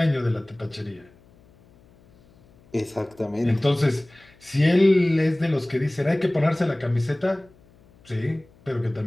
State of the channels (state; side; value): noise; left; hum, 29 dB below the sound